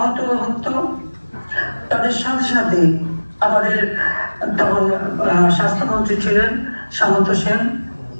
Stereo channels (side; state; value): both; inverted; correlation -1.00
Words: হতো, তাদের সাথে সাথে আমাদের তখন স্বাস্থ্যমন্ত্রী ছিলেন সামন্ত সেন,